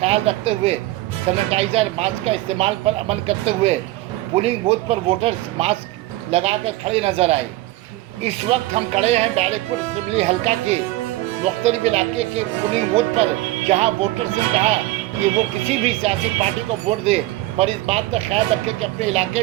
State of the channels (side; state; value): left; quieter; 17.6 dB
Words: रखते हुए सैनिटाइजर मास्क का इस्तेमाल पर अमल करते हुए पोलिंग बूथ पर वोटर्स मास्क लगाकर खड़े नजर आए। इस वक्त हम खड़े हैं बैरकपुर असेंबली हल्का के मुख्तलिफ इलाके के पोलिंग बूथ पर, जहां वोटर से कहा कि वो किसी भी सियासी पार्टी को वोट दे, पर इस बात का ख्याल रखें कि अपने